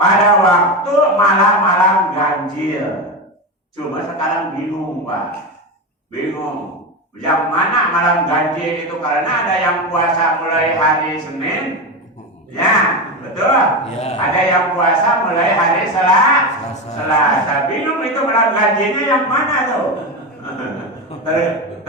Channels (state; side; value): normal; both; correlation 0.17